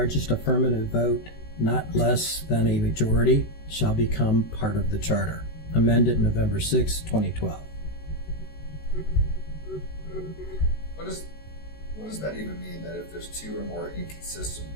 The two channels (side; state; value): right; late; 13 ms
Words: affirmative vote, not less than a majority, shall become part of the charter. Amended November 6, 2012. What does that even mean, that if there's 2 or more inconsistent